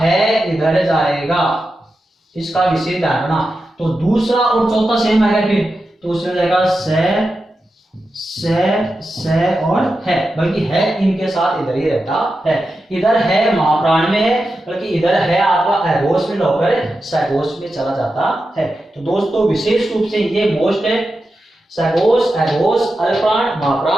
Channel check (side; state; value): both; normal; correlation 0.90